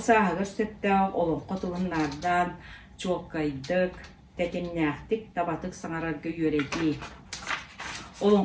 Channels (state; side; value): identical; both; correlation 1.00